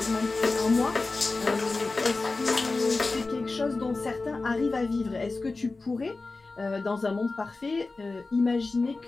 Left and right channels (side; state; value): right; quieter; 3.6 dB